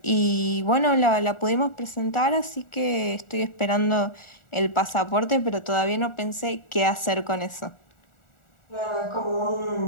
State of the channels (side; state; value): right; late; 1.4 ms